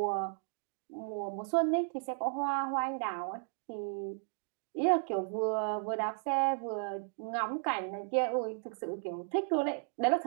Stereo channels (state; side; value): silent; left; 55 dB below the other